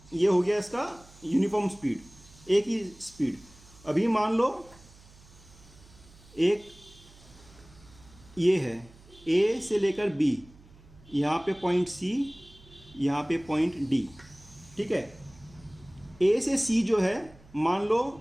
ये हो गया इसका यूनिफॉर्म स्पीड, एक ही स्पीड। अभी मान लो एक ये है ए से लेकर बी, यहाँ पे पॉइंट सी, यहाँ पे पॉइंट डी। ठीक है, ए से सी जो है मान लो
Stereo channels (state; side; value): noise; right; hum, 24 dB below the sound